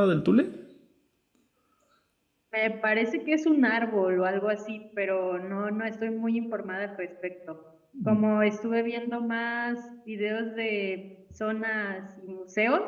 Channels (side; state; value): both; identical; correlation 1.00